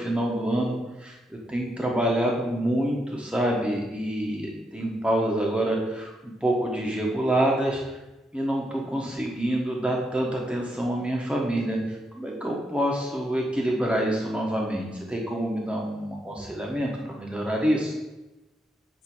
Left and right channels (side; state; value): both; normal; correlation 0.80